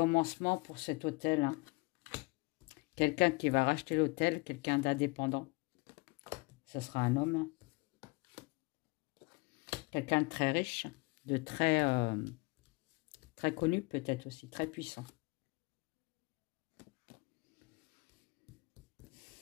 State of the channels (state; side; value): quieter; right; 25.8 dB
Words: pour cet hôtel, hein. Quelqu'un qui va racheter l'hôtel, quelqu'un d'indépendant. Ce sera un homme. Quelqu'un de très riche, de très, très connu peut-être aussi, très puissant.